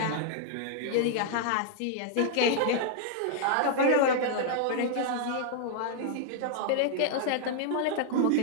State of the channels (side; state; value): both; different; correlation -0.01